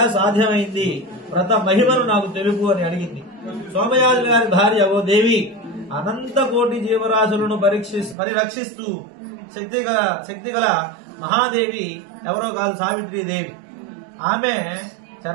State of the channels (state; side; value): drops out; left; at 8.2 s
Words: సాధ్యమైంది, వ్రత మహిమను నాకు తెలుపు అని అడిగింది. సోమయాజుల గారి భార్య, ఓ దేవి, అనంత కోటి జీవరాశులను పరిరక్షిస్తూ శక్తిగల మహాదేవి ఎవరో కాదు, సావిత్రీదేవి. ఆమె